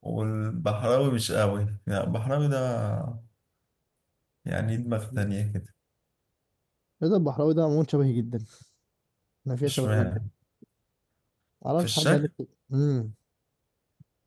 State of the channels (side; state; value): both; identical; correlation 1.00